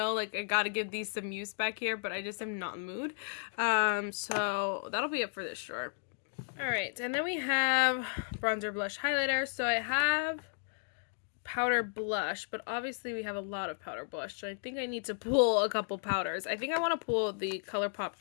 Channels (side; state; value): right; silent; digital silence